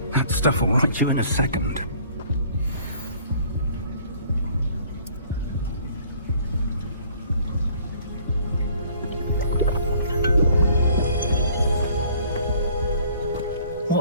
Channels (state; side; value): inverted; both; correlation -0.56